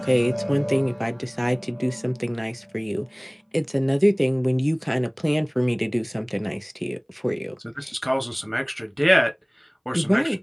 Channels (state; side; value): identical; both; correlation 1.00